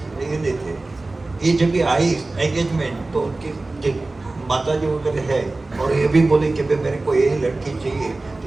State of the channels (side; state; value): left; quieter; 3.1 dB